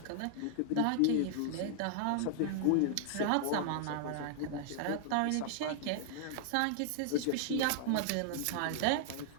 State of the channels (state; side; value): different; both; correlation 0.00